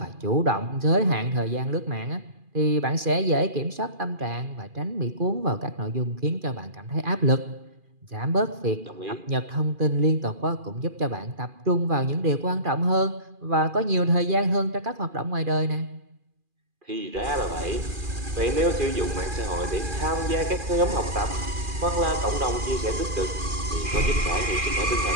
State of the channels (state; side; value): late; left; 2.4 ms